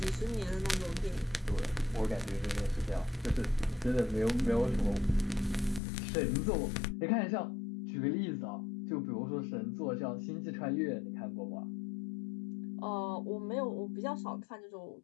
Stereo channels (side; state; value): right; drops out; at 5.8 s